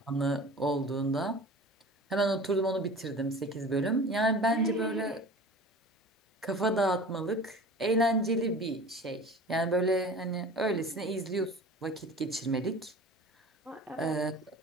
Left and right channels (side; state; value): both; normal; correlation 0.39